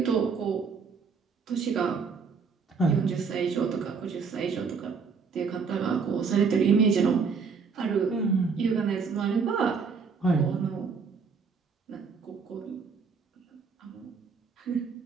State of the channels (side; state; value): left; quieter; 5.5 dB